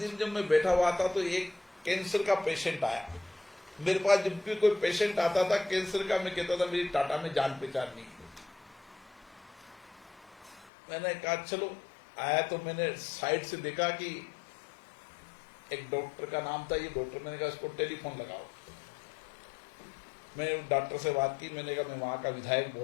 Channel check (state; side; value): drops out; right; at 10.7 s